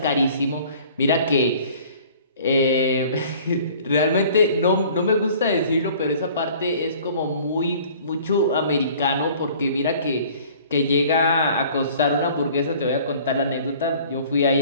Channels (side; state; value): both; inverted; correlation -0.50